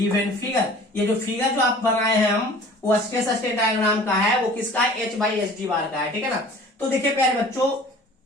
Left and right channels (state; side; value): normal; both; correlation 0.46